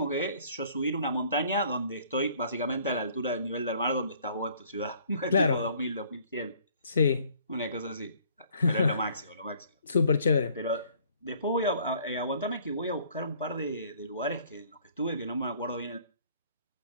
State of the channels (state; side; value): inverted; both; correlation -0.58